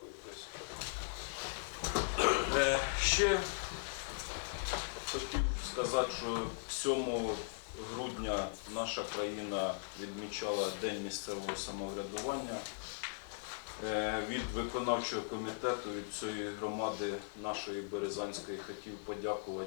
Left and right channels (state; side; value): silent; right; digital silence